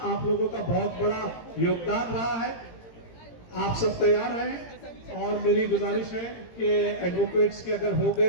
आप लोगों का बहुत बड़ा योगदान रहा है। आप सब तैयार हैं और मेरी गुजारिश है कि एडवोकेट्स के अगर हो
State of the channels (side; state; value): right; late; 18 ms